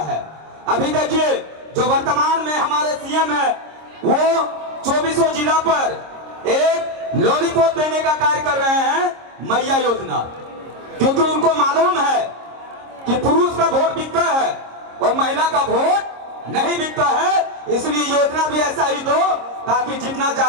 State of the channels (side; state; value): left; late; 26 ms